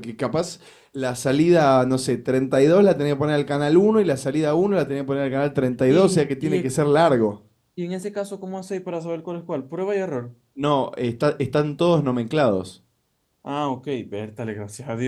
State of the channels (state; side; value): identical; both; correlation 1.00